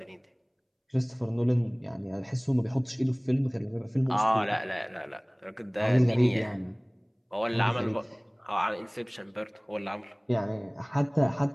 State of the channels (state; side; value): identical; both; correlation 1.00